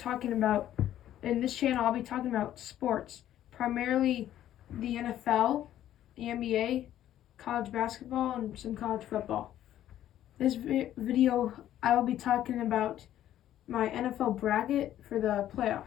about, in this channel, I'll be talking about sports, primarily the NFL, the NBA, college basketball, and some college football. This video, I will be talking about my NFL bracket for the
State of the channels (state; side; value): quieter; right; 12.1 dB